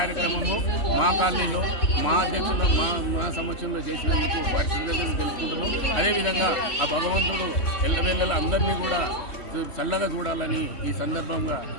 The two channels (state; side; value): late; right; 3.1 ms